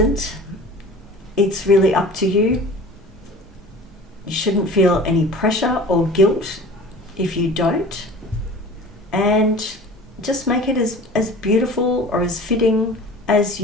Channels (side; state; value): both; normal; correlation 0.40